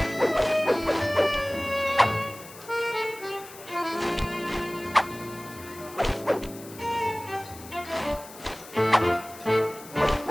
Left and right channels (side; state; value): left; noise; hiss, 18 dB below the sound